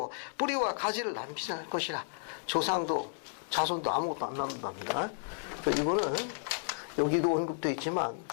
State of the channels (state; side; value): silent; right; 56 dB below the other